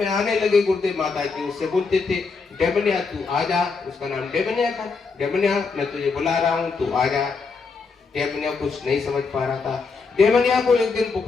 आने लगे गुरुदेव माता जी, उससे बोलते थे डेमनिया तू आजा। उसका नाम डेमनिया था। डेमनिया मैं तुझे बुला रहा हूँ, तू आजा। डेमनिया कुछ नहीं समझ पा रहा था। डेमनिया को एक दिन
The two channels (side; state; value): right; quieter; 4.7 dB